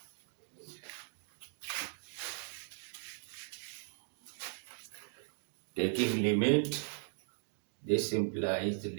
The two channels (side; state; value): left; silent; digital silence